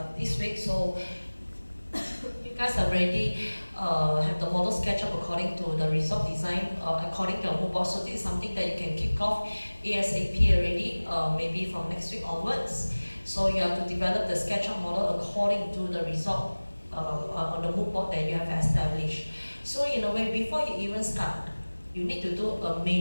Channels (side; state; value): both; inverted; correlation -1.00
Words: this week. So you guys already have the model SketchUp according to the result design, according to your mood board. So this is something that you can kick off ASAP already, maybe from next week onwards. So you have to develop the SketchUp model according to the result on the mood board that you have established. So in a way, before you even start, you need to do a